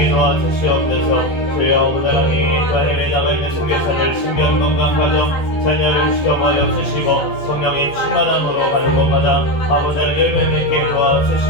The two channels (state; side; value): late; right; 14 ms